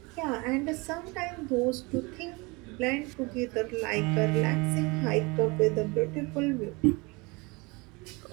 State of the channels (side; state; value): left; quieter; 26.5 dB